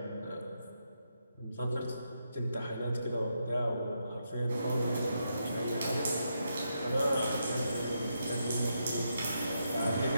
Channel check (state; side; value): inverted; both; correlation -0.82